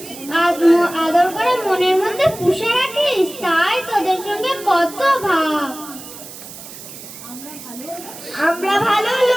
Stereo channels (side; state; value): right; noise; hiss, 14 dB below the sound